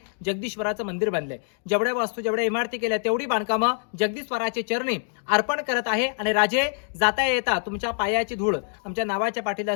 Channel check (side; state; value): right; silent; 60 dB below the other